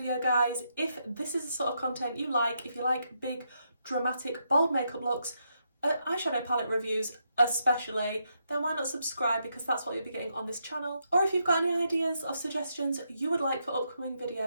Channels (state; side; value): inverted; both; correlation -0.80